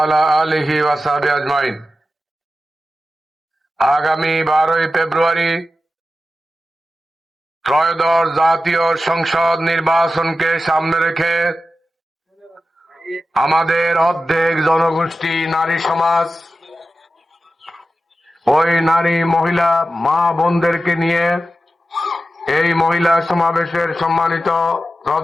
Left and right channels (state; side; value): normal; both; correlation 0.92